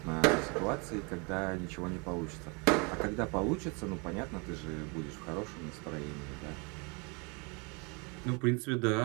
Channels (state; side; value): quieter; left; 31.8 dB